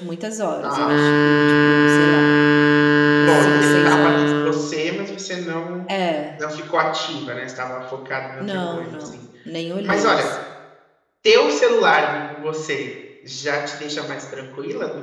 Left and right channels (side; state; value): both; identical; correlation 1.00